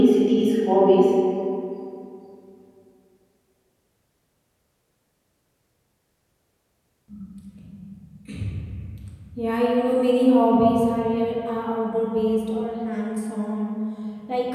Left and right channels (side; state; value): both; identical; correlation 1.00